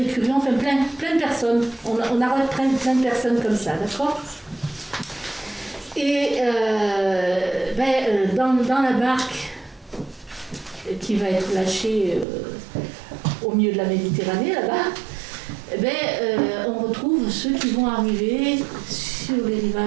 plein de personnes. On arrête plein de personnes comme ça, d'accord ? Et dans la barque qui va être lâchée au milieu de la Méditerranée, là-bas, on retrouve ceux qui vont arriver sur les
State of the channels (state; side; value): drops out; left; at 12.2 s